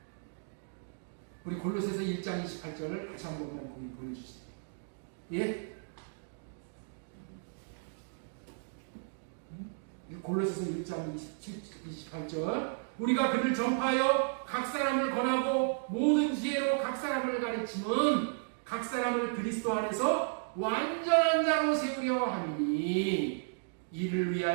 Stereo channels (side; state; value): left; silent; digital silence